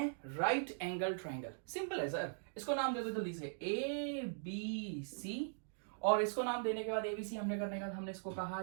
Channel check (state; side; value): silent; left; digital silence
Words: राइट एंगल ट्राइंगल। सिंपल है सर, इसको नाम दे दो जल्दी से, ए बी सी, और इसको नाम देने के बाद एबीसी हमने करने के बाद हमने इसको कहा